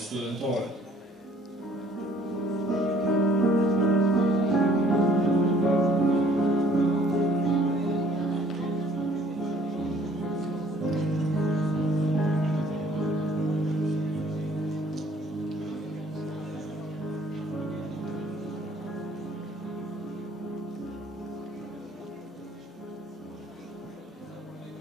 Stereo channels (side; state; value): both; normal; correlation 0.59